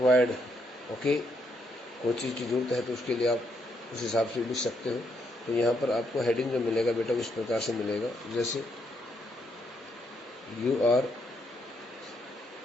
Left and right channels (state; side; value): normal; both; correlation 0.75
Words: Okay, कोई चीज़ की जरूरत है तो उसके लिए आप उस हिसाब से लिख सकते हो. तो यहाँ पर आपको हेडिंग जो मिलेगा बेटा इस प्रकार से मिलेगा, जैसे you are